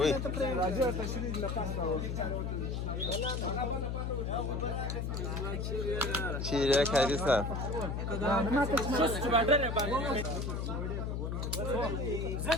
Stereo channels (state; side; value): noise; left; hum, 2 dB below the sound